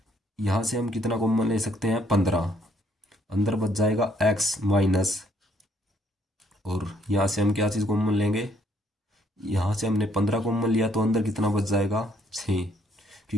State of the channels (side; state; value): both; normal; correlation 0.67